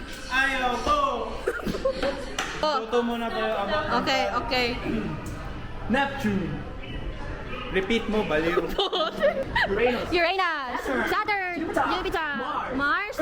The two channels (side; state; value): both; identical; correlation 1.00